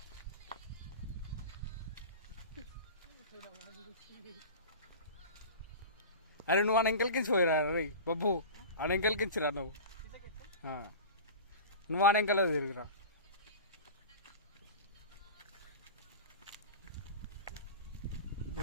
అరే నువ్వు ఆ ఎంకల్కించి పోయిరా రే బబ్బు, ఆ ఎంకల్కించిరా నువ్వు. నువ్వు ఆ ఎంకలే తిరిగిరా.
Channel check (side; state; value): both; inverted; correlation -0.33